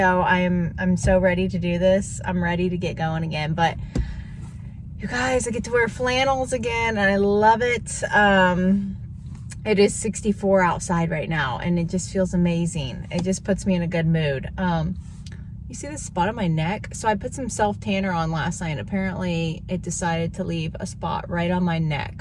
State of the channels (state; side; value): identical; both; correlation 1.00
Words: I'm so ready to do this. I'm ready to get going again. But you guys, I get to wear flannels again and I love it. It is 64 outside right now and it just feels amazing. It just puts me in a good mood. You see this spot on my neck? So I put some self tanner on last night. Apparently it decided to leave a spot right on my